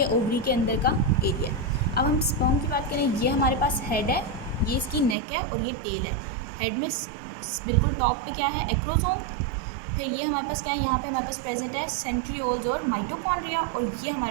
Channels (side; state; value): left; drops out; at 5.2 s